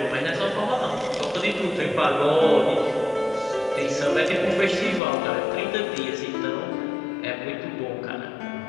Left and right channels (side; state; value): right; drops out; at 5.0 s